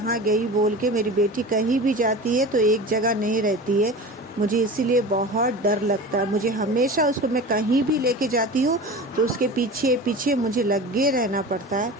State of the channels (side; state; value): both; normal; correlation 0.33